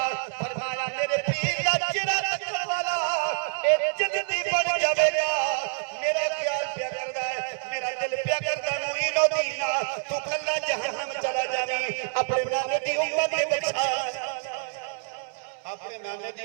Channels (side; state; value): left; silent; 60 dB below the other